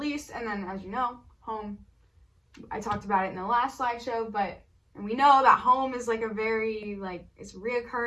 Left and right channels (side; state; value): both; identical; correlation 1.00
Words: and then, as you know, Home. I talked about it in the last slideshow, and we know that Home is like a very, like, it's a